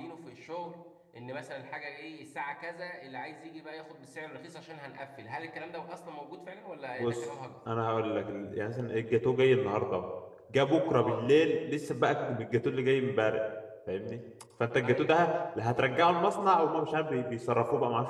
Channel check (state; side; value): identical; both; correlation 1.00